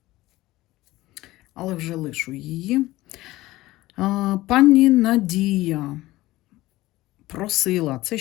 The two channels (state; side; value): quieter; right; 17.8 dB